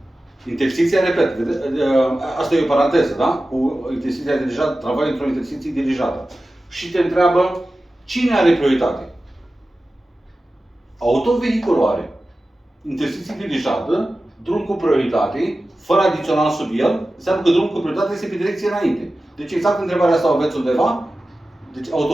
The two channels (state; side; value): normal; both; correlation 0.95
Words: Intersecția, repet, asta e o paranteză, da? Cu intersecția dirijată, tramvaiul într-o intersecție dirijată. Și te întreabă, cine are prioritate? Autovehiculul are. Intersecție dirijată, drum cu prioritate, fără adițional sub el, înseamnă că drumul cu prioritate este pe direcție înainte. Deci exact întrebarea asta o aveți undeva. Deci